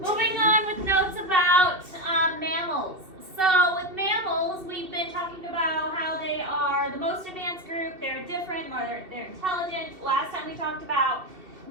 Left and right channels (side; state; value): left; late; 2.7 ms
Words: on with notes about mammals. So with mammals, we've been talking about how they are the most advanced group. They're different, more they're intelligent. Last time we talked about